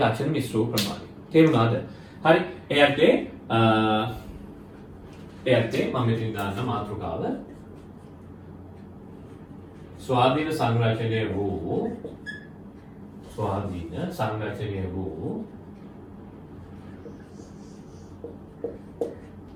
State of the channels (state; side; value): identical; both; correlation 1.00